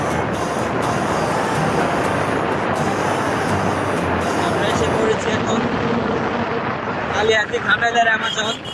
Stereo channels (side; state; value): both; identical; correlation 1.00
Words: আমরা এসে পড়েছি এখন কালিয়াতি ঘাটালের অ্যামাজন।